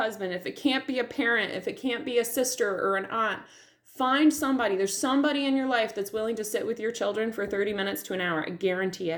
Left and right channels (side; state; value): both; identical; correlation 1.00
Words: if it can't be a parent, if it can't be a sister or an aunt. Find somebody. There's somebody in your life that's willing to sit with your children for 30 minutes to an hour. I guarantee